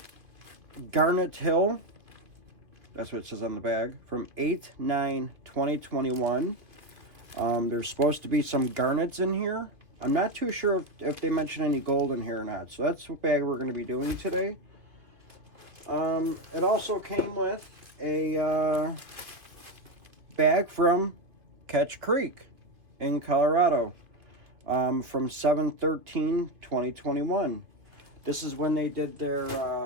Garnet Hill. That's what it says on the bag. From 8/9/2021. There's supposed to be some garnets in here. I'm not too sure if they mention any gold in here or not. So that's what bag we're going to be doing today. It also came with a bag from Ketch Creek in Colorado from 7/13/2021. This is when they did their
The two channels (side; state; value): left; late; 2.2 ms